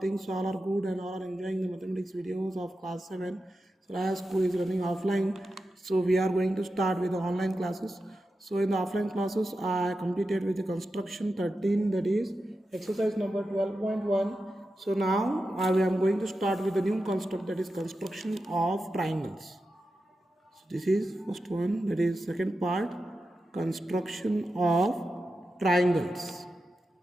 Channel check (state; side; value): normal; both; correlation 0.91